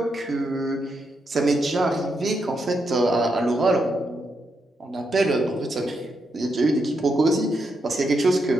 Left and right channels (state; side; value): normal; both; correlation 0.82